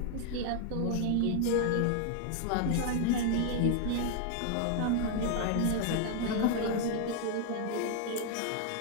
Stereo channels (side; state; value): both; different; correlation 0.00